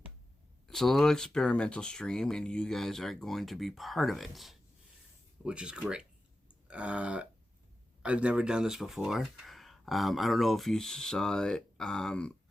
it's a little experimental stream, and you guys are going to be part of it, which is great. I've never done this before. I don't know if you saw it.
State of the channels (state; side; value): normal; both; correlation 0.92